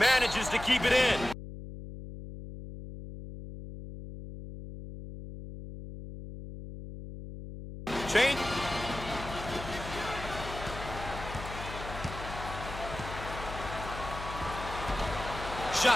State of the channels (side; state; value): left; noise; hum, 10 dB below the sound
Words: to keep it in. Change.